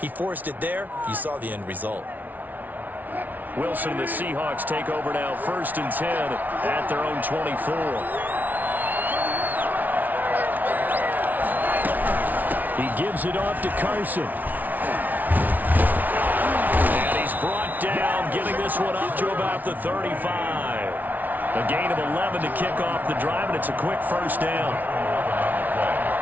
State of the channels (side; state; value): left; late; 0.079 ms